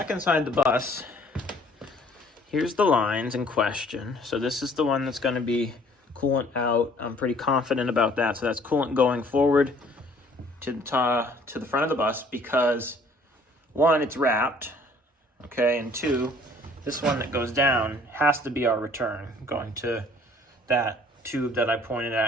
inside the bus, here's the lines in question. So this is the one that's going to be coolant out. I'm pretty confident about that. So that's coolant going forward to the front of the bus because, one, it's wrapped, okay, and two, this one that goes down has to be our return, going to that tube that I pointed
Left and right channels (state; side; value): normal; both; correlation 0.57